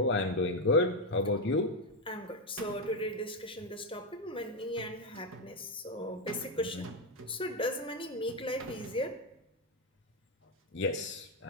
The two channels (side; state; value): both; normal; correlation 0.06